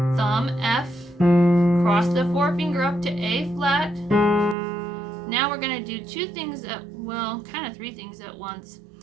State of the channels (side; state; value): left; drops out; at 4.5 s